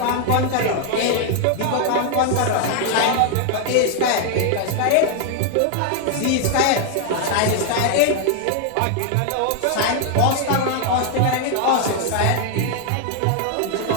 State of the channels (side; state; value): both; different; correlation 0.00